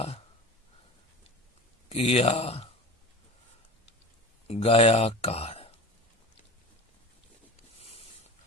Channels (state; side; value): normal; both; correlation 0.34